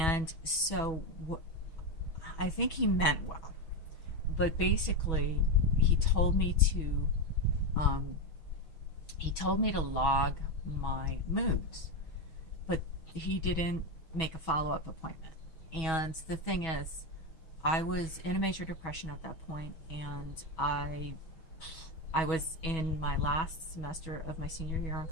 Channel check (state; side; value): late; right; 6.2 ms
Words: so I think he meant well, but basically he told me to log my moods, but he didn't make a follow-up appointment. And the thing is, I was in a major depression at that point, and I was in my last semester of my senior year in